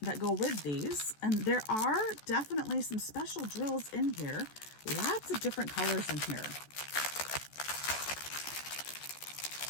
that go with these. And there are definitely some special drills in here. Lots of different colors in here.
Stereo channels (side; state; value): right; late; 14 ms